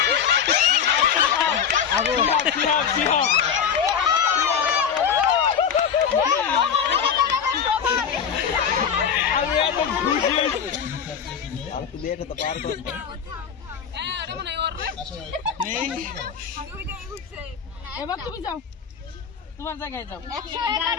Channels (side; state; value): right; quieter; 7.5 dB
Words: এবার তুমি যাও, তোমার জায়গায় যাও।